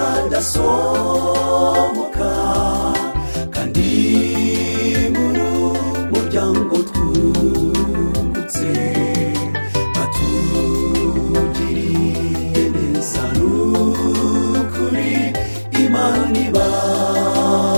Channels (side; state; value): both; inverted; correlation -1.00